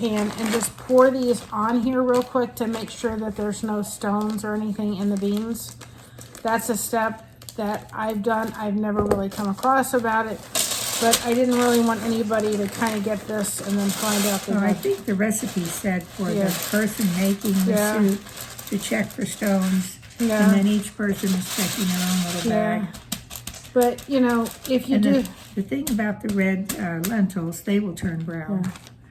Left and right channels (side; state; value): both; identical; correlation 1.00